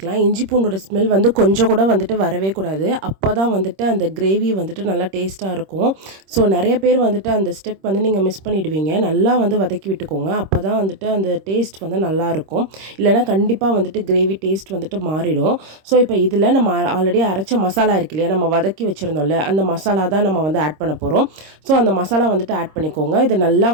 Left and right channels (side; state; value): left; late; 26 ms